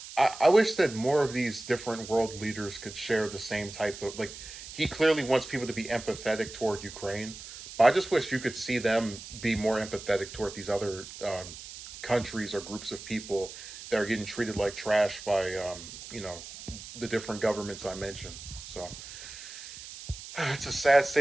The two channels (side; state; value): right; noise; hiss, 13 dB below the sound